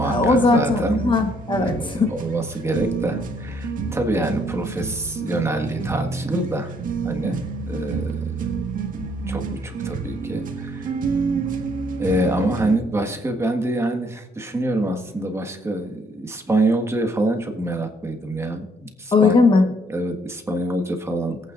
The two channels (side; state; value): both; normal; correlation 0.67